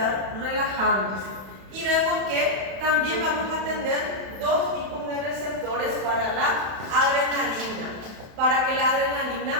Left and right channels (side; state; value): left; late; 31 ms